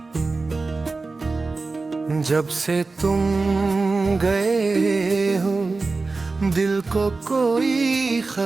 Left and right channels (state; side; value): quieter; left; 3.8 dB